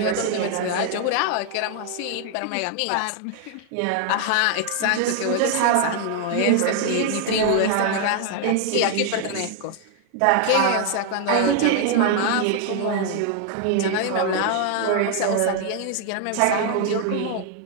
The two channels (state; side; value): different; both; correlation 0.00